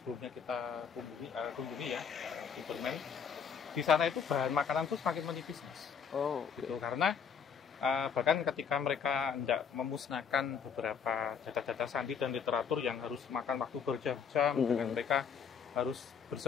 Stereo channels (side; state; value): right; quieter; 6.7 dB